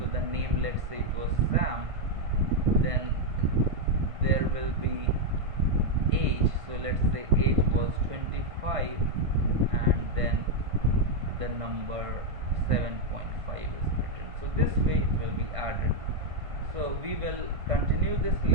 the name, let's say it was Sam, then there will be age, so let's say age was 25, and then the number 7.5 is written. So this way it will be added. So we will continue this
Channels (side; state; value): left; late; 1.5 ms